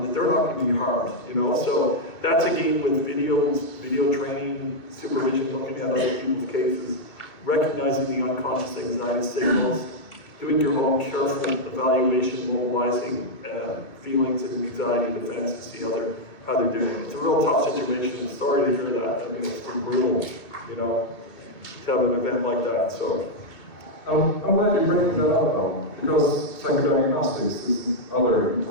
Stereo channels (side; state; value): right; late; 2.2 ms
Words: that they're not going to be harmed, you know? So that's again with videos, video training, supervision, looking at other people's cases, recognizing the unconscious anxiety signals, doing your own careful evaluation, mobilizing feelings and anxiety defense to see how they're doing. It's a real tough situation. Sorry to hear that. I mean, it's been brutal, you know, to have an event like that. So I'm glad you bring that up, because psychodiagnostics is another